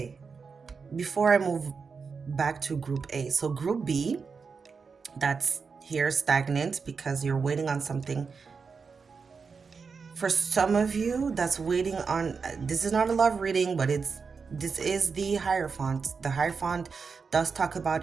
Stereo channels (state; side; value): quieter; left; 5.3 dB